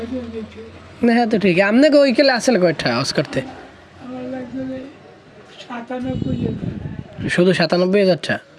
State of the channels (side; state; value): both; identical; correlation 1.00